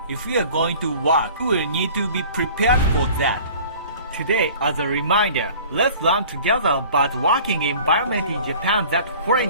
If we are going to work, we will need to be prepared for that. Today, as a reminder, let's learn together about working environment in Japan that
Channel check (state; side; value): inverted; both; correlation -0.46